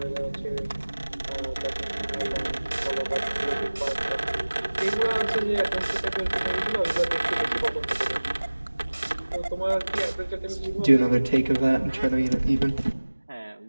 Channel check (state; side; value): inverted; both; correlation -1.00